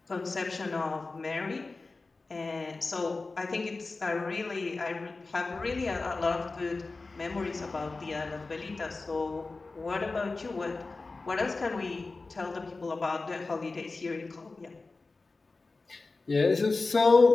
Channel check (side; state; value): right; quieter; 3.7 dB